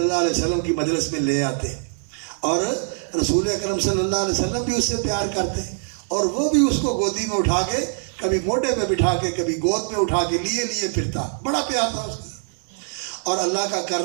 اللہ علیہ وسلم کی مجلس میں لے آتے، اور رسول اکرم صلی اللہ علیہ وسلم بھی اس سے پیار کرتے اور وہ بھی اس کو گودی میں اٹھا کے کبھی موڈے پہ بٹھا کے کبھی گود میں اٹھا کے لیے پھرتا، بڑا پیار تھا اس کا۔ اور اللہ کا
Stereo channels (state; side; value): silent; left; digital silence